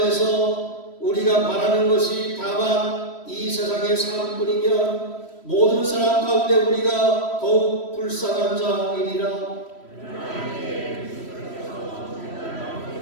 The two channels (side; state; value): right; late; 3.1 ms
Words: 우리가 바라는 것이 다만 이 세상의 삶뿐이면 모든 사람 가운데 우리가 더욱 불쌍한 자이리라.